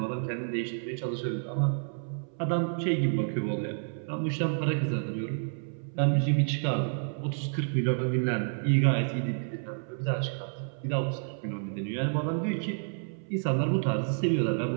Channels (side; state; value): left; silent; 58 dB below the other